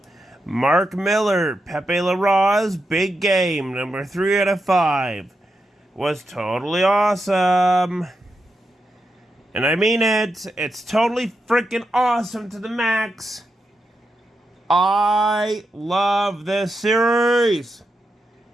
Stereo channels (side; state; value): both; normal; correlation 0.86